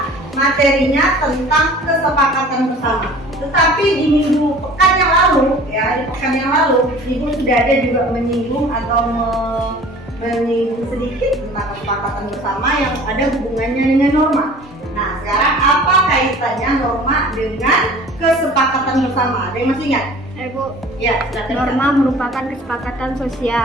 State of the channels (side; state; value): both; normal; correlation 0.46